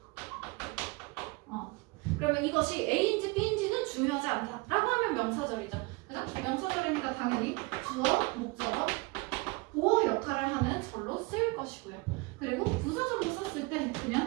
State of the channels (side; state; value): left; quieter; 26.1 dB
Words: 그러면 이것이 A인지 B인지는 중요하지 않다 라고 하면 명사절이죠. 그죠? 명사절이니까 당연히 주어, 목적어, 보어 역할을 하는 절로 쓸 것이고요. 그리고 부사절로 썼을 때